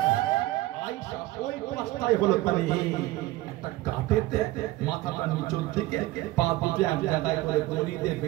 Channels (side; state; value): left; quieter; 17.9 dB